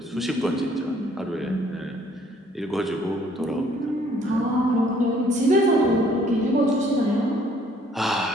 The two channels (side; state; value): both; normal; correlation 0.61